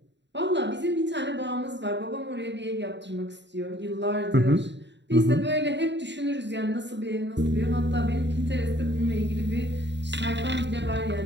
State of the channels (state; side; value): late; left; 0.52 ms